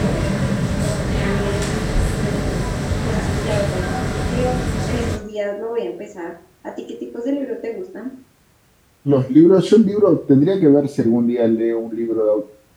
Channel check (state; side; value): identical; both; correlation 1.00